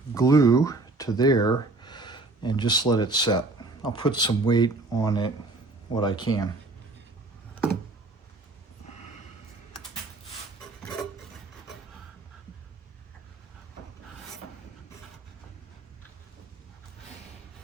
glue to there and just let it set. I'll put some weight on it, what I can.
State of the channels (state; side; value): quieter; left; 3.3 dB